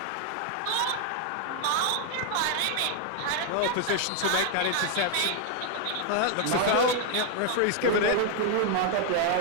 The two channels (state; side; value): different; both; correlation 0.00